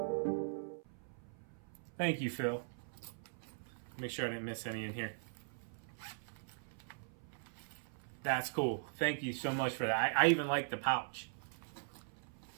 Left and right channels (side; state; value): left; silent; 51 dB below the other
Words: Thank you, Phil. Make sure I didn't miss any in here. That's cool. Thank you so much for that. I even like the pouch.